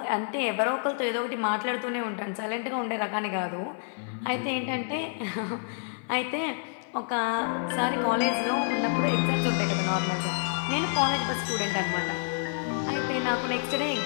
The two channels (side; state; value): right; silent; 59 dB below the other